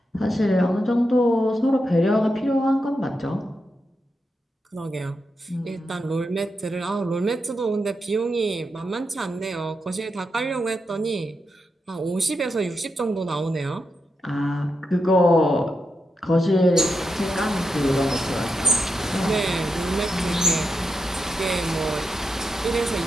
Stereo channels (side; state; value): both; normal; correlation 0.86